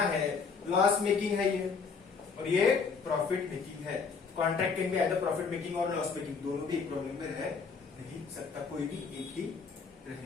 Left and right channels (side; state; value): right; quieter; 5.2 dB